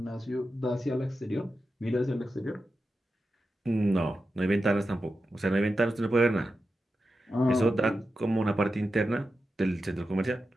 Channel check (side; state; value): both; normal; correlation 0.90